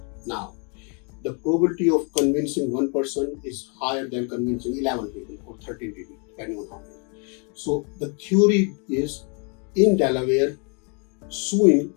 Now, the probability of convincing one person is higher than convincing 11 people or 13 people, depending on how many. So the theory is, in Delaware, suing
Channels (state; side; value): quieter; right; 35.7 dB